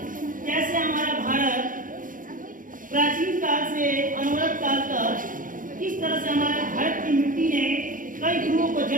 कैसे हमारा भारत प्राचीन काल से अनवरत काल तक किस तरह से हमारे भारत की मिट्टी ने कई गुरुओं को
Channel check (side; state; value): left; late; 0.39 ms